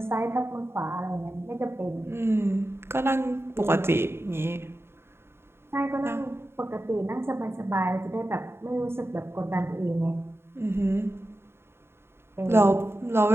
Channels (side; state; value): left; late; 0.12 ms